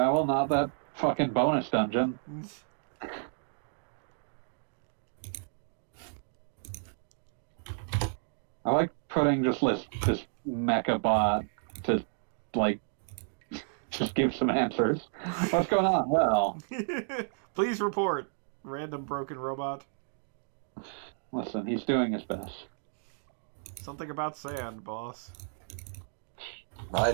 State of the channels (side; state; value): left; silent; digital silence